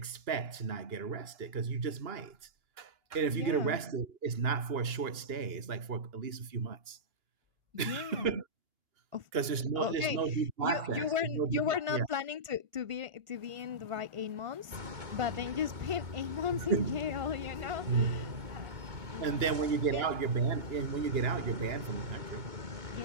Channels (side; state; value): left; late; 2.9 ms